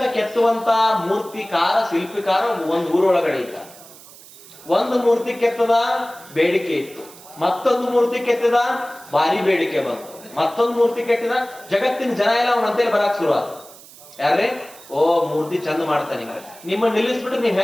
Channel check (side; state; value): right; noise; hiss, 20 dB below the sound